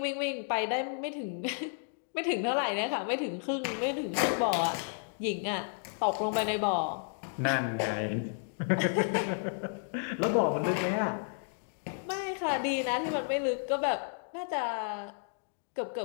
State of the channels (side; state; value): right; silent; digital silence